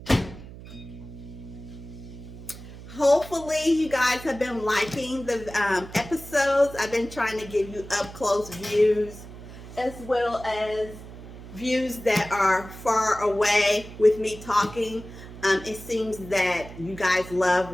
Hopefully you guys have been liking the episodes. I've been trying to give you up close views as well as views that are far away with me talking. It seems that you guys love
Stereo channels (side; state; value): right; noise; hum, 15 dB below the sound